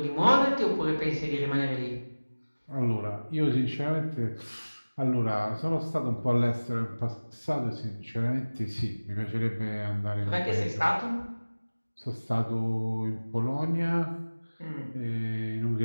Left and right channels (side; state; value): both; inverted; correlation -1.00